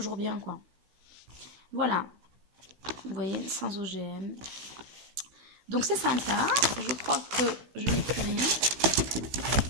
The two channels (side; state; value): left; late; 16 ms